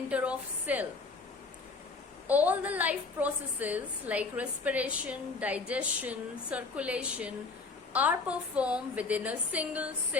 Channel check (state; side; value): quieter; right; 4.2 dB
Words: of cell. All the life processes like respiration, digestion, circulation are performed within a single